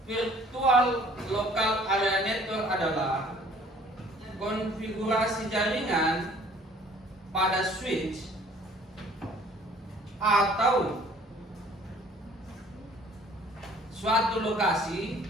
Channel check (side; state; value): both; normal; correlation 0.55